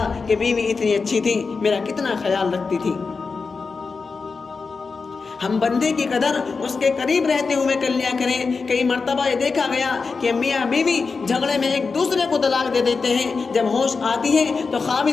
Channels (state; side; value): quieter; right; 4.6 dB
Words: کہ بیوی اتنی اچھی تھی, میرا کتنا خیال رکھتی تھی. ہم بندے کی قدر اس کے قریب رہتے ہوئے کر لیا کریں. کئی مرتبہ یہ دیکھا گیا کہ میاں بیوی جھگڑے میں ایک دوسرے کو طلاق دے دیتے ہیں. جب ہوش آتی ہے تو